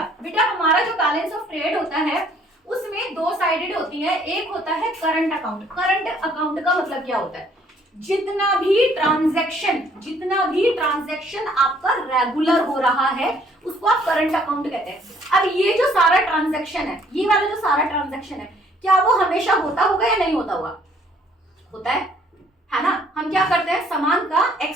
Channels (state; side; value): normal; both; correlation 0.62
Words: बेटा हमारा जो बैलेंस ऑफ ट्रेड होता है उसमें 2 साइडेड होती है। एक होता है करंट अकाउंट। करंट अकाउंट का मतलब क्या होता है? जितना भी ट्रांजैक्शन आपका रेगुलर हो रहा है उसको आप करंट अकाउंट कहते हैं। अब ये जो सारा ट्रांजैक्शन है, ये वाला जो सारा ट्रांजैक्शन है, क्या वो हमेशा होता होगा या नहीं होता होगा? होता है ना? हम क्या करते हैं? सामान का